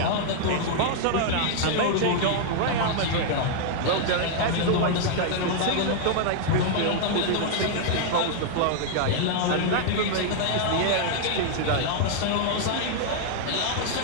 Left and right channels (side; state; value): both; different; correlation -0.01